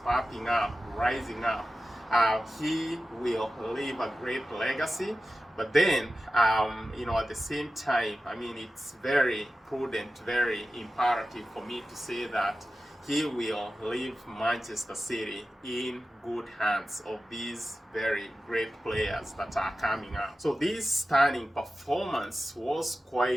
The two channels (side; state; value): both; normal; correlation 0.94